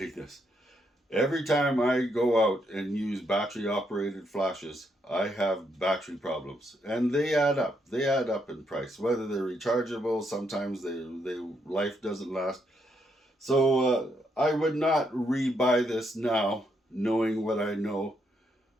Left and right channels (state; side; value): normal; both; correlation 0.77